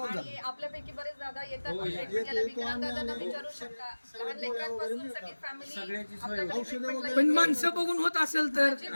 जातात. आपल्यापैकी बरेच दादा येतात, विकलांग दादांना विचारू शकता. लहान लेकरांपासून सगळी फॅमिली. पण माणसं बघून होत असेल तर,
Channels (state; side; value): inverted; both; correlation -1.00